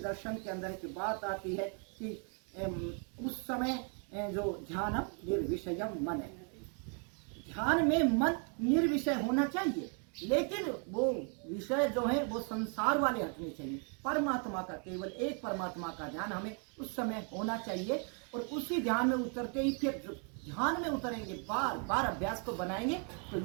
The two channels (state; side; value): quieter; left; 39.9 dB